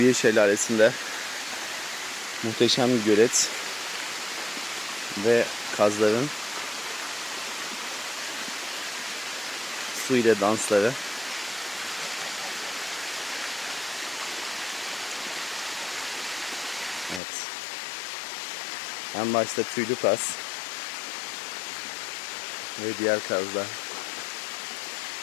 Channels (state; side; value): drops out; right; at 17.2 s